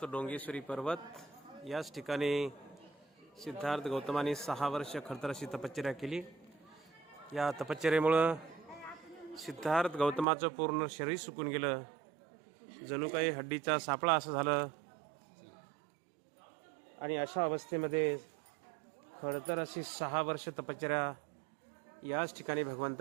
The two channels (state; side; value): drops out; left; at 10.2 s